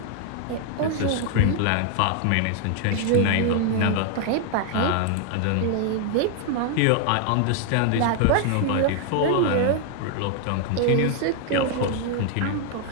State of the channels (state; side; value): different; both; correlation 0.00